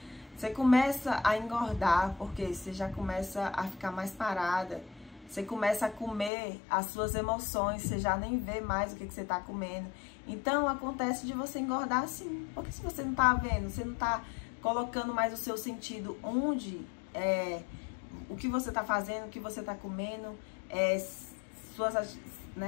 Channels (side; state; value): right; drops out; at 6.3 s